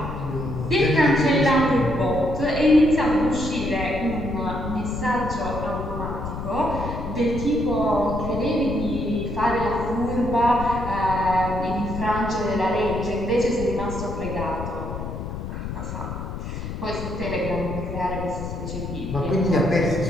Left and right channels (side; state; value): left; noise; rumble, 6 dB below the sound